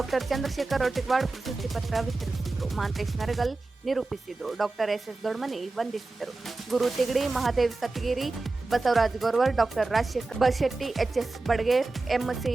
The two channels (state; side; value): quieter; left; 3.4 dB